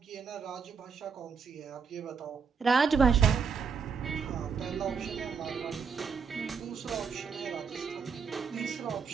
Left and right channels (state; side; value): quieter; left; 6.0 dB